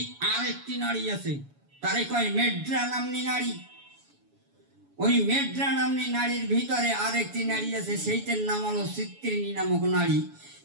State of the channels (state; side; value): late; left; 7.1 ms